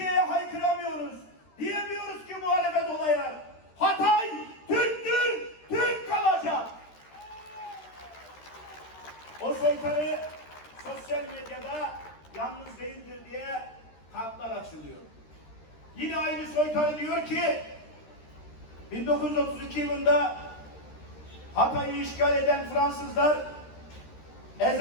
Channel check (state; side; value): late; right; 13 ms